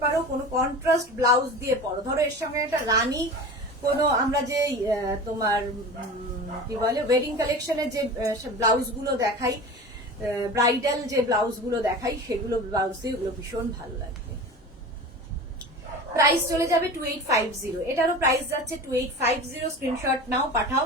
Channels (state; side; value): normal; both; correlation 0.34